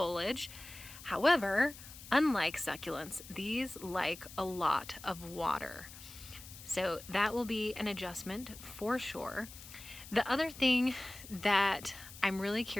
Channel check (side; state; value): left; noise; hiss, 16 dB below the sound